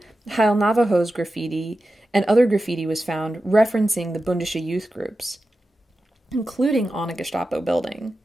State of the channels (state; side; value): normal; both; correlation 0.92